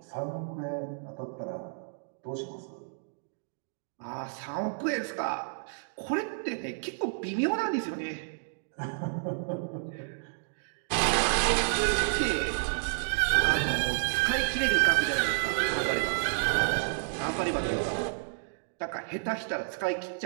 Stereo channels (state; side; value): silent; left; digital silence